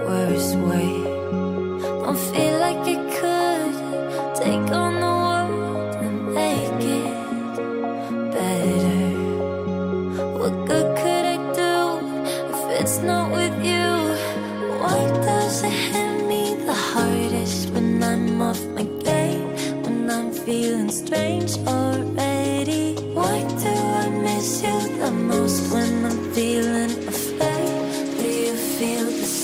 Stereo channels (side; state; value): both; identical; correlation 1.00